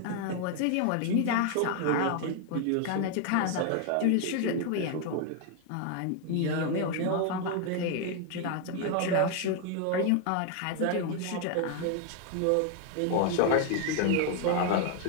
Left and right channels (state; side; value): different; both; correlation 0.00